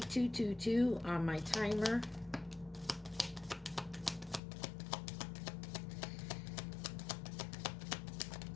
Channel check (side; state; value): right; drops out; at 4.4 s